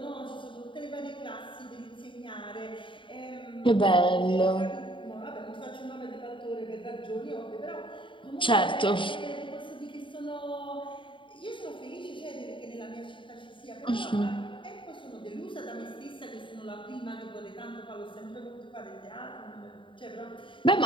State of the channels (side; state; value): right; late; 0.24 ms